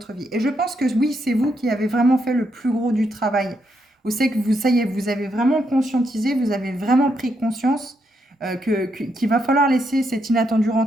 vie. Et je pense que oui, c'est vous qui avez vraiment fait le plus gros du travail. Vous savez que ça y est, vous avez vraiment conscientisé, vous avez vraiment pris conscience qu'il va falloir laisser cet inattendu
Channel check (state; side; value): normal; both; correlation 0.79